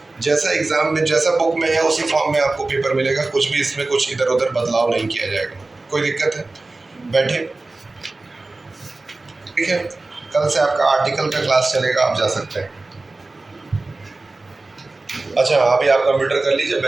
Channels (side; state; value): left; quieter; 3.2 dB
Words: जैसा एग्जाम में जैसा बुक में है उसी फॉर्म में आपको पेपर मिलेगा, कुछ भी इसमें कुछ इधर उधर बदलाव नहीं किया जाएगा। कोई दिक्कत है? बैठे, ठीक है। कल से आपका आर्टिकल का क्लास चलेगा, आप जा सकते हैं। अच्छा, अभी आप कंप्यूटर कर लीजिए,